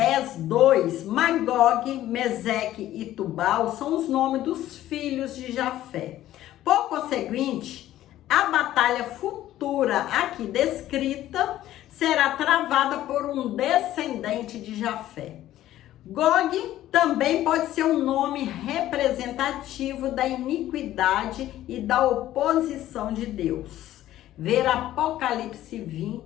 2, Magog, Meseque e Tubal são os nomes dos filhos de Jafé. Por conseguinte, a batalha futura aqui descrita será travada por um descendente de Jafé. Gog também pode ser um nome representativo da iniquidade e da oposição de Deus. Ver Apocalipse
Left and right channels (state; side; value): quieter; right; 13.6 dB